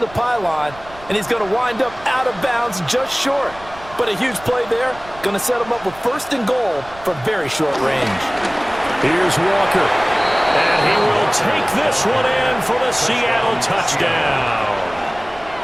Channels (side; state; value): right; noise; rumble, 20 dB below the sound